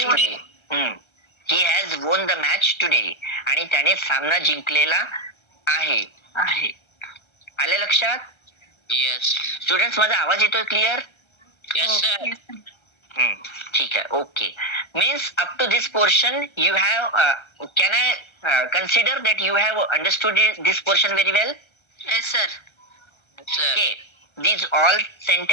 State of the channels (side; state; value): right; late; 1.3 ms